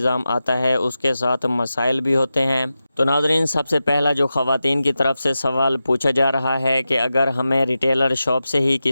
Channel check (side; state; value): both; inverted; correlation -0.92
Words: آتا ہے اس کے ساتھ مسائل بھی ہوتے ہیں۔ تو ناظرین، سب سے پہلا جو خواتین کی طرف سے سوال پوچھا جا رہا ہے کہ اگر ہمیں ریٹیلر شاپ سے ہی